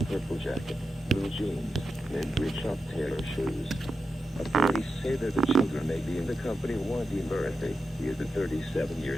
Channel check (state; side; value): normal; both; correlation 0.88